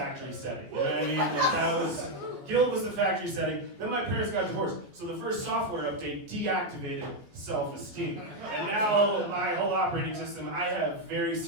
setting. You know what I mean? Like guilt was the factory setting. Then my parents got divorced, so the first software update deactivated self-esteem. And now my whole operating system, I have very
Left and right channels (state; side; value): late; left; 14 ms